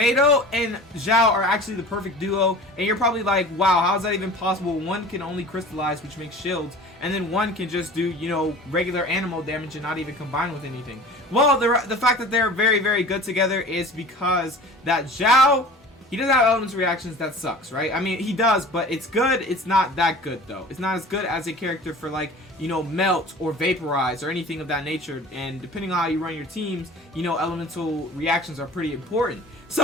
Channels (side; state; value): both; normal; correlation 0.41